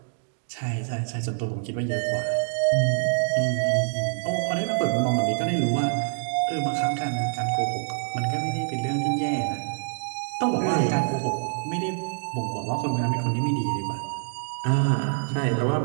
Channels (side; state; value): left; silent; digital silence